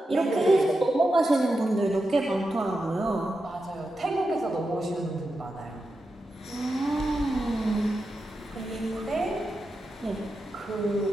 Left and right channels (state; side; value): normal; both; correlation 0.89